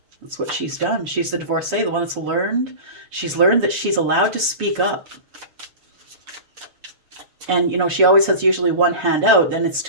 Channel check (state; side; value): late; left; 7.0 ms